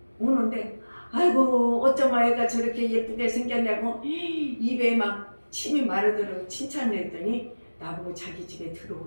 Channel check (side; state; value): both; inverted; correlation -1.00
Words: 오는데 아이고 어쩌면 애가 저렇게 예쁘게 생겼냐고 입에 막 침이 마르도록 칭찬을 했더니 나보고 자기 집에